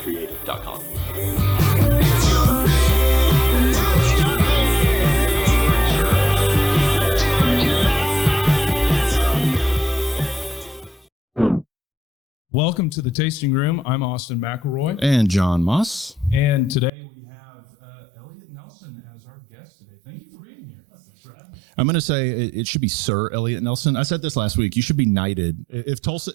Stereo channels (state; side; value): drops out; left; at 16.9 s